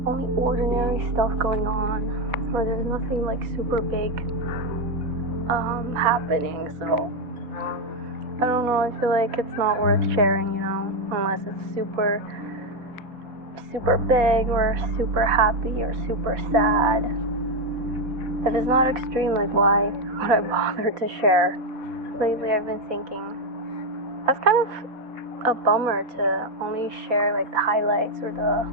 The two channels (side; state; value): left; late; 4.1 ms